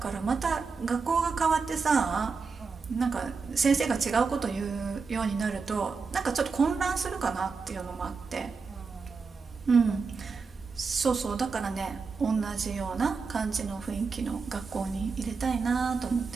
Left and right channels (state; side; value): quieter; left; 4.9 dB